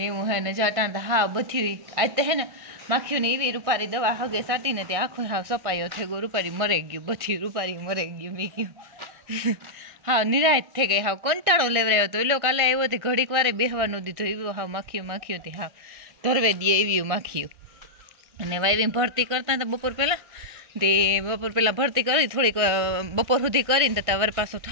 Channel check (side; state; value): left; late; 1.6 ms